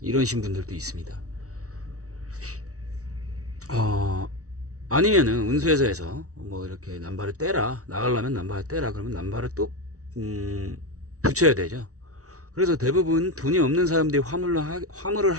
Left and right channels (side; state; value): left; late; 0.65 ms